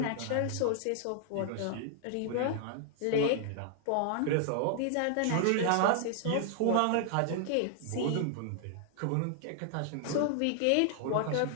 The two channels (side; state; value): both; different; correlation 0.00